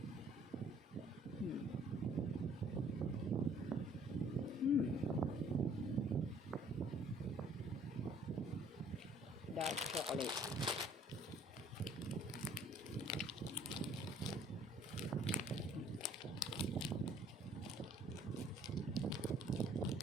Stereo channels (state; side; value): normal; both; correlation 0.57